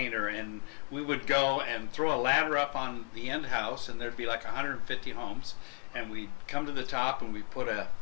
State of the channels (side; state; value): right; quieter; 33.5 dB